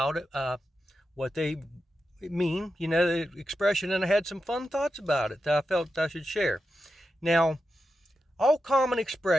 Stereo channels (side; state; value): both; normal; correlation 0.89